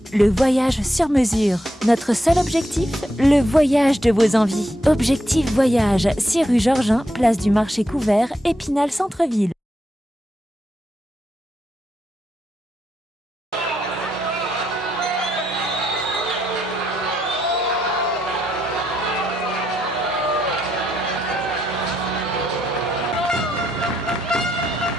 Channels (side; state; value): both; normal; correlation 0.80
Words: le voyage sur mesure. Notre seul objectif, le voyage de vos envies. Objectif Voyage, 6 rue Georgin, place du Marché Couvert, Épinal Centre-Ville.